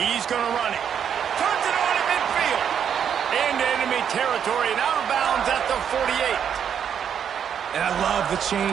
going to run it. Turns it on at midfield. Into enemy territory and out of bounds at the 48. And I love the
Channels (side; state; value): left; quieter; 8.2 dB